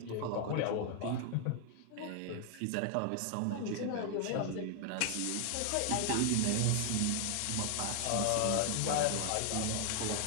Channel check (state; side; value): different; both; correlation 0.00